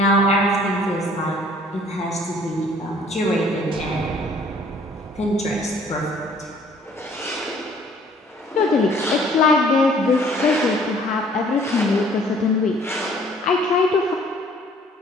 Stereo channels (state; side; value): normal; both; correlation 0.57